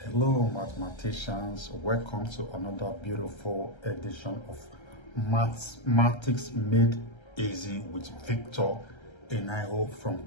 Hello mathematicians, welcome to another beautiful edition of Mathematics Made Easy with Victor Enayo from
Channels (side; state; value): right; late; 1.3 ms